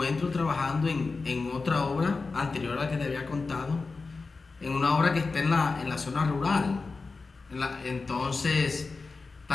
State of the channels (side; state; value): right; quieter; 4.1 dB